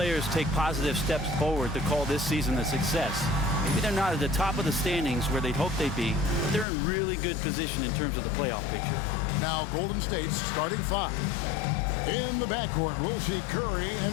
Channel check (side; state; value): right; drops out; at 6.7 s